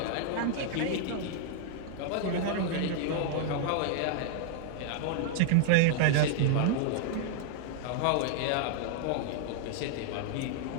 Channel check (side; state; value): both; different; correlation 0.00